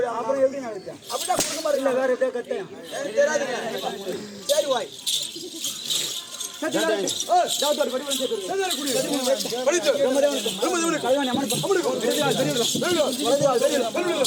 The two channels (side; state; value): both; identical; correlation 1.00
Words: அப்புறம் எப்படி நினைச்சேன் அப்படிதான் கொடுக்க மாதிரி இல்லை. வேற எதாவது கட்டேன் சரி வாய்